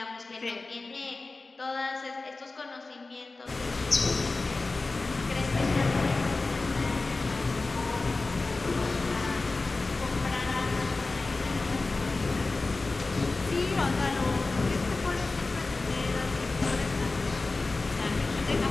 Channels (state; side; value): quieter; right; 3.5 dB